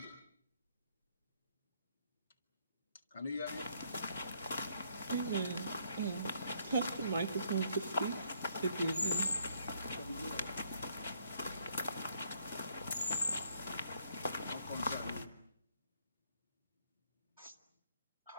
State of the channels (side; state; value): both; inverted; correlation -0.68